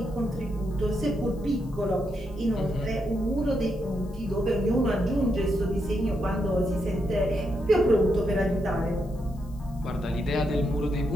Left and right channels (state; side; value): noise; left; hiss, 28 dB below the sound